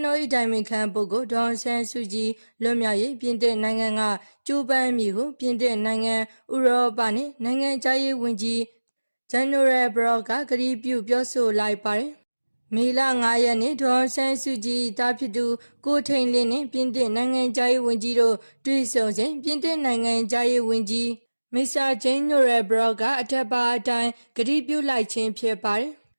တော်၏တိုင်ပင်ခံပုဂ္ဂိုလ်ဒေါ်အောင်ဆန်းစုကြည်လွတ်မြောက်ရေးပြင်သစ်နိုင်ငံကကြိုးပမ်းမှုဟုပြင်သစ်နိုင်ငံဥရောပနှင့်နိုင်ငံသားရေးဝန်ကြီးGeneral Brock ကကတိပြုပြောဆိုလိုက်ပါတယ်။မေလ9ရက်နေ့ဒေါ်အောင်ဆန်းစုကြည်တာဖြစ်သူကိုထိန်လင်းနှင့်ပြင်သစ်နိုင်ငံသားရေးဝန်ကြီးတို့တွေ့ဆုံစဉ်ပြင်သစ်နိုင်ငံသားရေးဝန်ကြီး Mr. General Brock ကအထက်ပါအတိုင်းကတိပြုလိုက်ခြင်းဖြစ်ပါတယ်။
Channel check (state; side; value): inverted; both; correlation -1.00